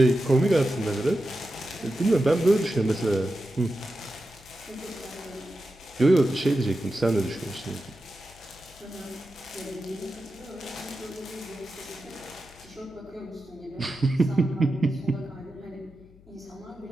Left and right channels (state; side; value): noise; left; hum, 25 dB below the sound